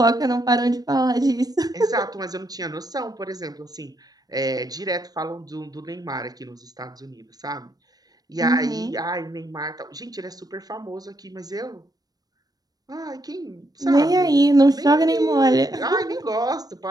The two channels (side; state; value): left; late; 0.19 ms